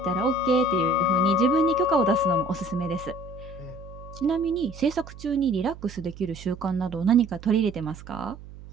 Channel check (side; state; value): right; noise; hum, 16 dB below the sound